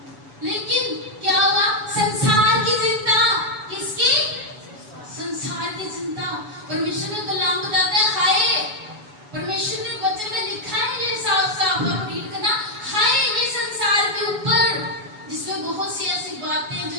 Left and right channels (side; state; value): left; late; 7.0 ms